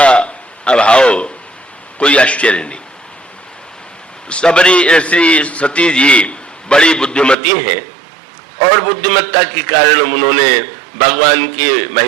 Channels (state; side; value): drops out; left; at 7.4 s